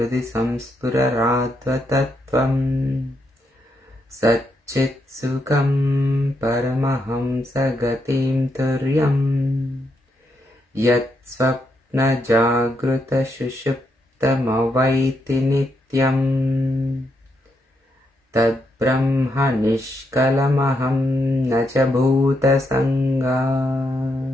Samspurarattva-tattvam Satchit Sukham Paramahamsa Gatim Turyam Yat Swapna Jagruta Shushuptam Avaiti Nityam तद्ब्रह्म निष्कलमहं न च भूतसङ्गा.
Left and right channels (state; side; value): normal; both; correlation 0.79